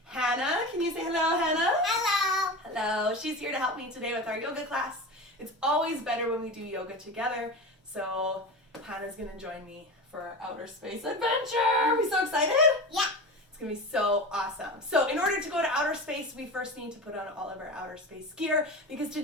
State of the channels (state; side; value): normal; both; correlation 0.28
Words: Hannah. Can you say hello, Hannah? Hello. Hello. She's here to help me today with our yoga class. It's always better when we do yoga together, so Hannah's going to join me for our outer space adventure. Are we so excited? Yeah. It's going to be so awesome. So in order to go to outer space, we first need to put on all of our outer space gear, because